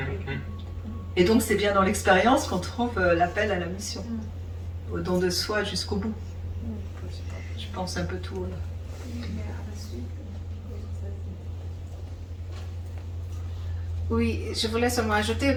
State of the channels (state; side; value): identical; both; correlation 1.00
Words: Et donc c'est bien dans l'expérience qu'on trouve l'appel à la mission, au don de soi jusqu'au bout. Je pense un peu tout. Là. Oui, je voulais seulement ajouter,